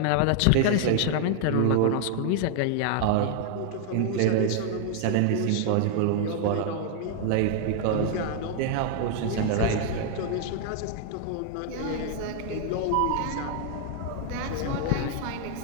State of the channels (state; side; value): different; both; correlation 0.00